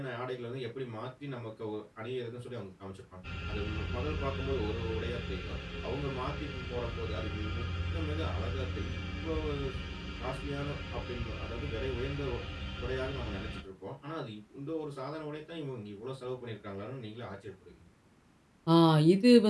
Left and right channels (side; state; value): both; identical; correlation 1.00